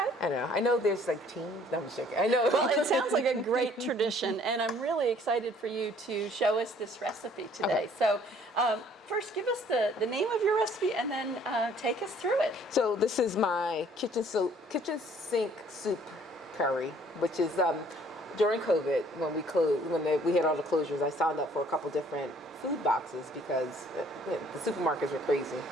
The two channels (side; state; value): both; normal; correlation 0.59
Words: I don't know. I know there's like teams. No, I'm just joking. I know. Well, it sounds like a great tradition, and I'm really excited for you to show us this recipe today. Okay. So, first, give us the name of your recipe, and then take us through it. So this is my kitchen sink soup curry, which is during COVID when we had all the closures. I signed up for a couple different food boxes because the supermarkets were crazy,